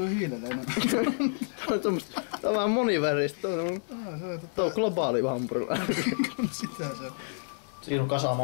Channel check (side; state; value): right; silent; digital silence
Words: hiilelle enemmän. Tää on vähän moniväristä. Tää on globaali hampurilla. Sitä se. Siinä on kasa